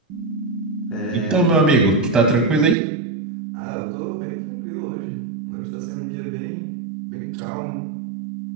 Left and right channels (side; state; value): left; drops out; at 2.8 s